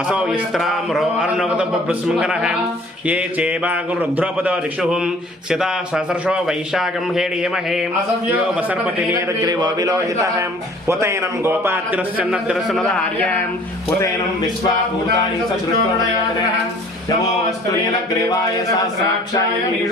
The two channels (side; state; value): both; normal; correlation 0.52